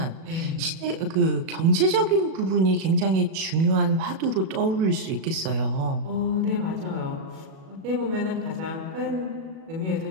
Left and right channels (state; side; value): late; left; 37 ms